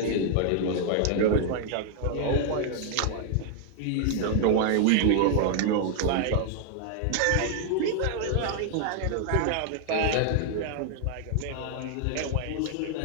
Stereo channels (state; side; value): different; both; correlation 0.00